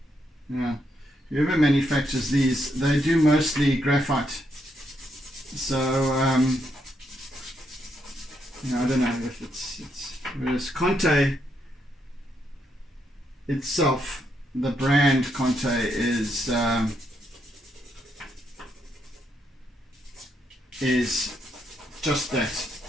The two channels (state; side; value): normal; both; correlation 0.78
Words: Yeah, whoever manufactures these, they do mostly graphite. So, you know, I don't know if it's whereas Conte itself, the brand Conte is just that.